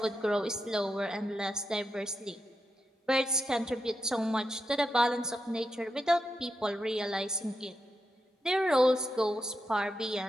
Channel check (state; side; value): normal; both; correlation 0.86